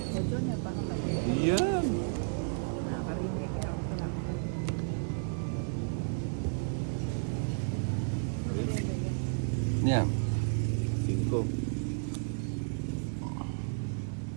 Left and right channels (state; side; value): silent; left; 56 dB below the other